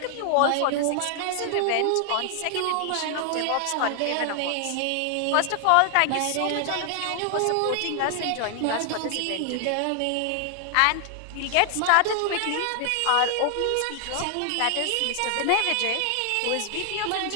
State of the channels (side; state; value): both; different; correlation 0.00